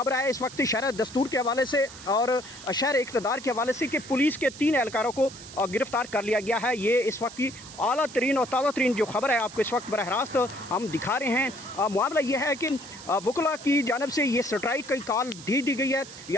है इस वक्त शहर दस्तूर के हवाले से और शहर इक़्तिदार के हवाले से कि पुलिस के 3 एहलकारों को गिरफ्तार कर लिया गया है। ये इस वक्त की आला तरीन और ताज़ा तरीन जो खबर है आपको इस वक्त बरह रास्त हम दिखा रहे हैं। मामला ये है कि वकला की जानिब से ये स्ट्राइक की कॉल दी गई है।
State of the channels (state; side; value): noise; right; hiss, 16 dB below the sound